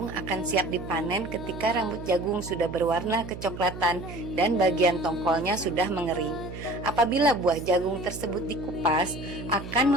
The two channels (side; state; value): right; noise; hum, 11 dB below the sound